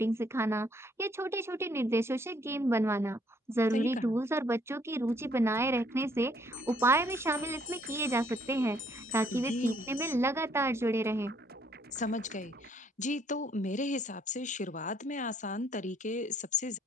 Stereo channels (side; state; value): both; normal; correlation 0.66